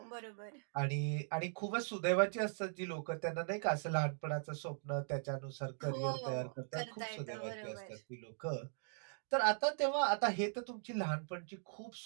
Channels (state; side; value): silent; left; digital silence